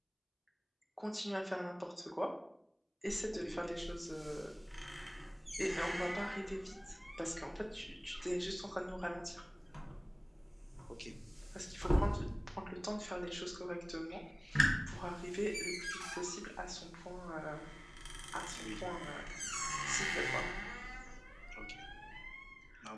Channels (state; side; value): identical; both; correlation 1.00